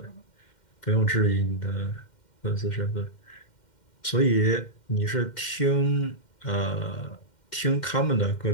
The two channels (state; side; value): late; right; 2.1 ms